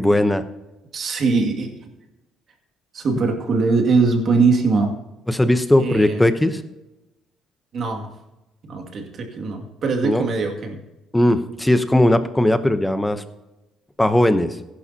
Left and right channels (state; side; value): normal; both; correlation 0.85